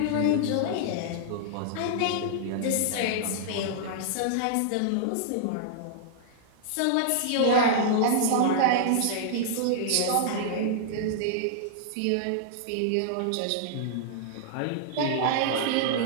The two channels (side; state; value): both; different; correlation -0.01